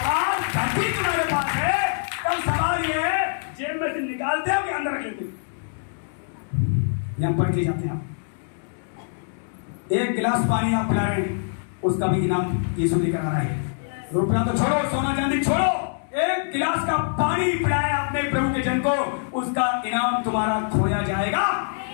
आज घटी तुम्हारे पास है, तब सवाल ये है जेब में से निकालते हो कि अंदर रख लेते हो? यहां पढ़ के जाते हैं आप। एक गिलास पानी आप पिला रहे हैं, उसका भी इनाम यीशु लेकर आ रहा है। रुपया तो छोड़ो, सोना चांदी छोड़ो, एक गिलास का पानी पिलाया आपने प्रभु के जन को, उसका इनाम तुम्हारा खोया जाएगा?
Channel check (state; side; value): silent; right; digital silence